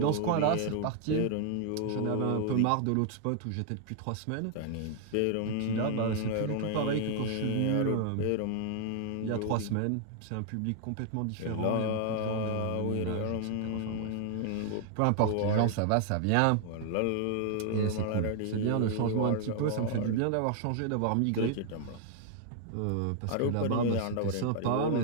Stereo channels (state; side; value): different; both; correlation 0.00